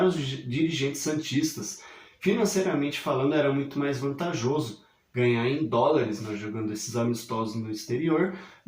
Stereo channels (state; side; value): identical; both; correlation 1.00